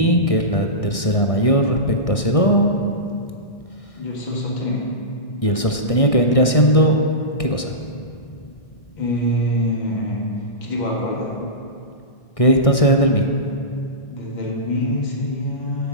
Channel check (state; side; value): late; right; 1.6 ms